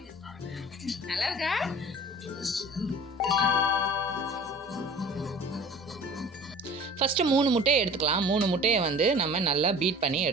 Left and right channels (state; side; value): normal; both; correlation 0.44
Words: நல்லா இருக்கா? ஃபஸ்ட்டு 3 முட்டையை எடுத்துக்கலாம். 3 முட்டையை வந்து நம்ம நல்லா பீட் பண்ணி